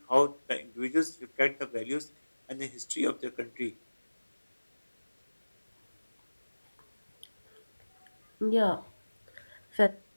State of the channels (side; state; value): both; inverted; correlation -1.00